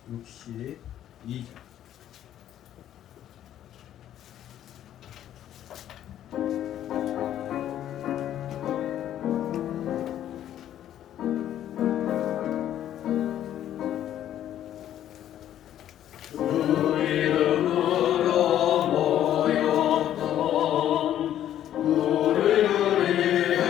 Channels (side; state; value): right; quieter; 11.4 dB